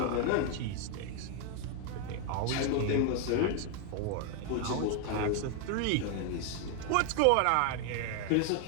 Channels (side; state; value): both; different; correlation 0.00